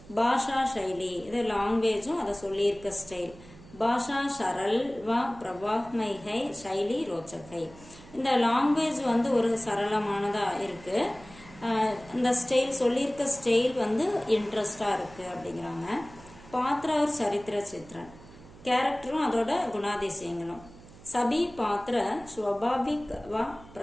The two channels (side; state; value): right; noise; hum, 21 dB below the sound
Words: பாஷா சைலி, இது லாங்குவேஜும் அதை சொல்லியிருக்க ஸ்டைல். பாஷா சரல் வ பிரபாக்மை ஹை, சைலி ரோச்சக் ஹை. இந்த லாங்குவேஜ் வந்து ஒரு சரளமானதா இருக்கு, இந்த ஸ்டைல் சொல்லியிருக்க ஸ்டைல் வந்து இன்ட்ரெஸ்டா இருக்கு அப்படிங்கிறாங்க. பாத்திர ஒரு சரித்திர சித்திரன், கேரக்டரும் அதோட குணாதிசயங்களும். சபி பாத்திர ஸ்வபாவிக் வ